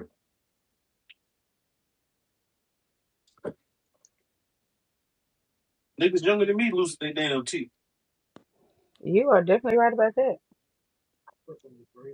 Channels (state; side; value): identical; both; correlation 1.00